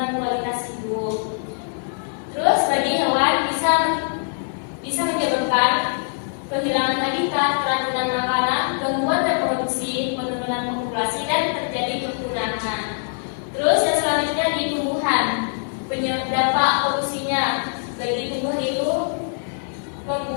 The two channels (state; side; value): silent; right; digital silence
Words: kualitas hidup. Terus bagi hewan bisa menyebabkan kehilangan habitat, keracunan makanan, gangguan reproduksi, penurunan populasi, dan terjadi kepunahan. Terus yang selanjutnya di tumbuhan, dampak polusinya bagi tumbuh itu